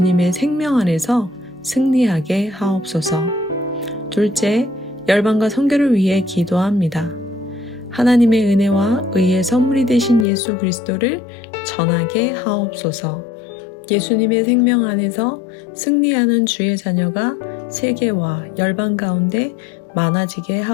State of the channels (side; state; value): right; drops out; at 10.2 s